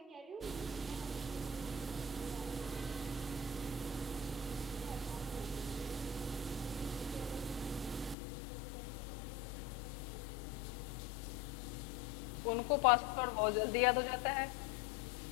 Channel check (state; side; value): drops out; right; at 8.2 s